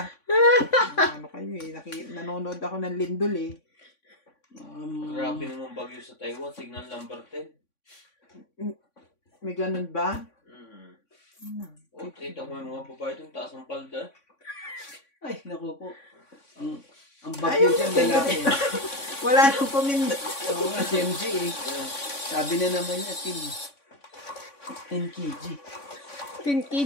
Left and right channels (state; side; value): late; right; 3.6 ms